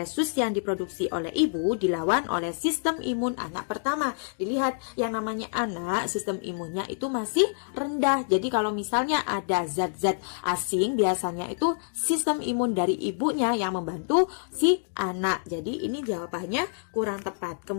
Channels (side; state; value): right; silent; digital silence